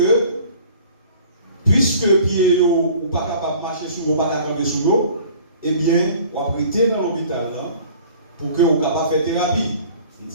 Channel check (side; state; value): both; inverted; correlation -0.49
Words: puisque pied ou pas capable de marcher sur vous, pas capable de camper sur vous, eh bien, on va prêter dans l'hôpital pour que vous capable de faire thérapie. Il